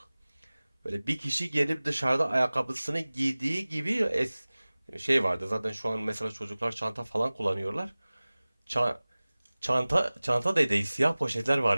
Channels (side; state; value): both; inverted; correlation -0.99